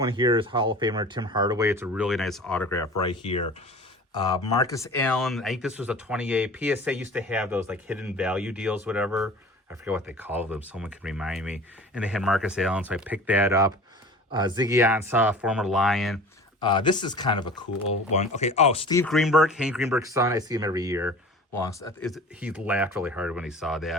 here is Hall of Famer Tim Hardaway. It's a really nice autograph right here. Marcus Allen, I think this was a 28. PSA used to have those like hidden value deals, whatever. I forget what they call them. Someone can remind me. And they had Marcus Allen, so I picked that up. Ziggy Ansah, former Lion. This is kind of a cool one. Okay. Oh, Steve Greenberg, Hank Greenberg's son. I see him every year. He laughed really hard when he saw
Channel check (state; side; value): normal; both; correlation 0.40